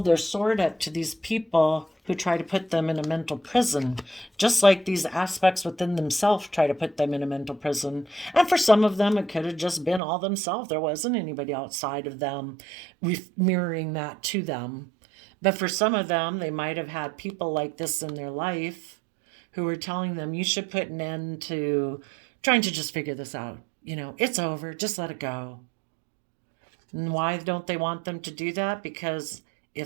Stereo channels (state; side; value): drops out; left; at 10.0 s